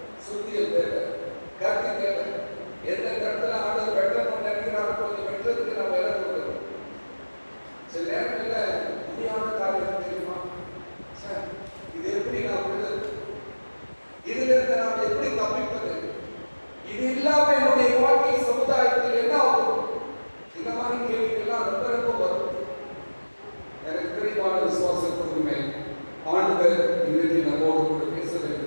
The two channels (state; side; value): inverted; both; correlation -1.00